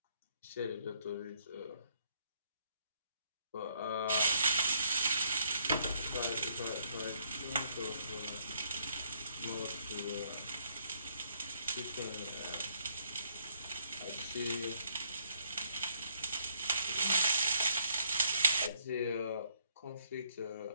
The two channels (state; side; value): inverted; both; correlation -0.69